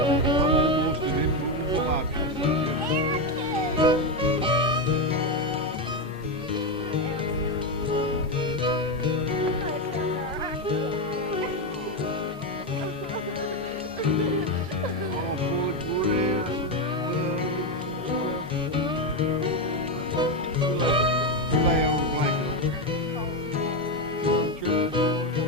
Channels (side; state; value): both; normal; correlation 0.09